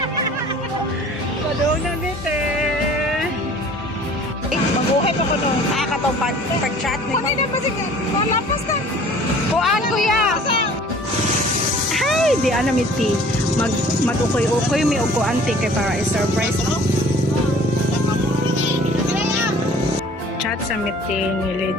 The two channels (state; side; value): normal; both; correlation 0.50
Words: Padaw na mite. Mabuhay pa ko nung nakakatong pag-chat. Kung hindi na ba siya? Malapas na. Kuhaan, kuya. Hi, di ana miti. Mag-ukoy-ukoy mi og kuanti kay para i-surprise mo. Chat sa miti ni